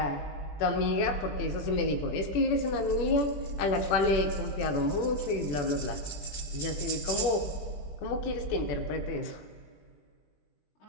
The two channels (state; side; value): late; right; 21 ms